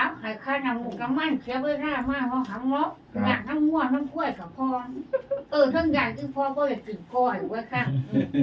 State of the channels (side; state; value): both; identical; correlation 1.00